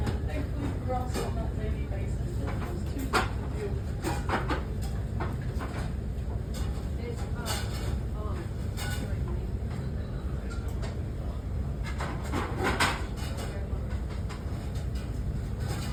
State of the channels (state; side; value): identical; both; correlation 1.00